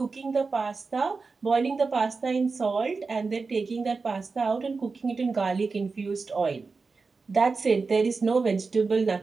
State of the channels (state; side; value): quieter; left; 4.4 dB